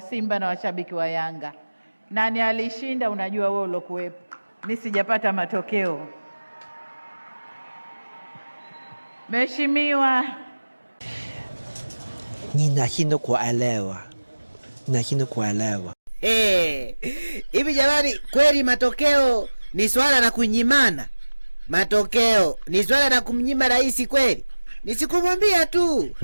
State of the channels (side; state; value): both; inverted; correlation -1.00